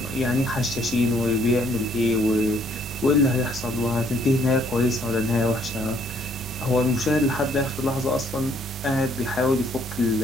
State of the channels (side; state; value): both; normal; correlation 0.66